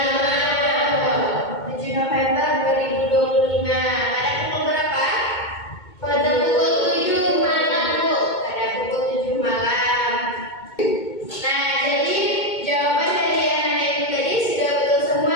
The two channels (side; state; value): right; late; 2.2 ms